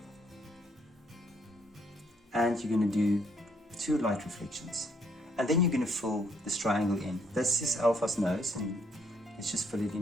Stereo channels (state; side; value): normal; both; correlation 0.70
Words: And you're going to do 2 light reflections. And then you're going to fill this triangle in. This is Alpha's nose, and let's just fill it